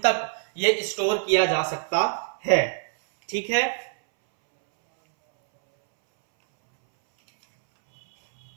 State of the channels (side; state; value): left; silent; 63 dB below the other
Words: ये स्टोर किया जा सकता है। ठीक है,